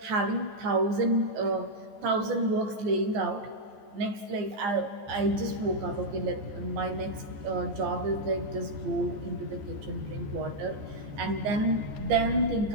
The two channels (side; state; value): left; late; 14 ms